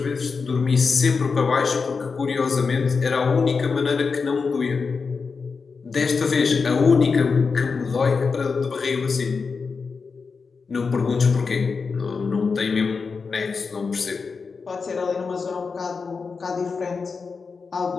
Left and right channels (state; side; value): quieter; right; 5.0 dB